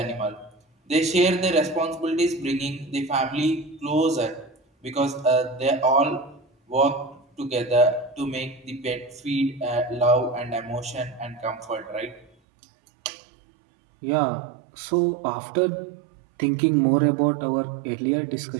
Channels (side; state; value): left; drops out; at 12.3 s